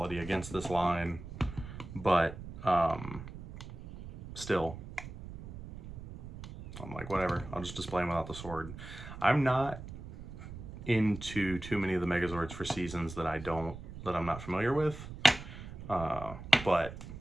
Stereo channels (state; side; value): noise; right; rumble, 12 dB below the sound